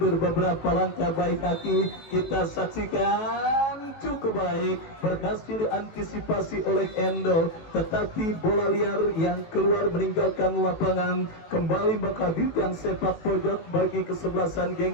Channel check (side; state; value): right; late; 19 ms